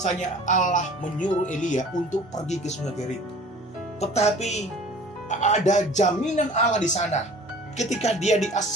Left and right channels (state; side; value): normal; both; correlation 0.46